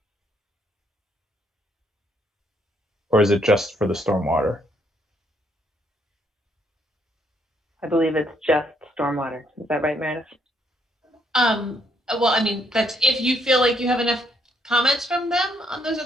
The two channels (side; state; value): both; normal; correlation 0.71